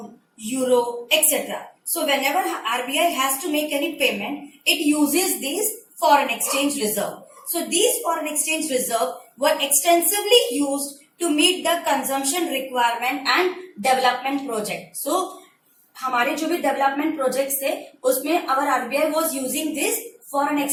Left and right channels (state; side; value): identical; both; correlation 1.00